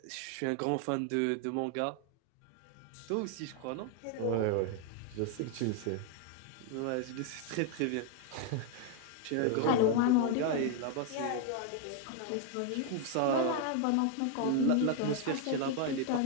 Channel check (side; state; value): both; different; correlation 0.01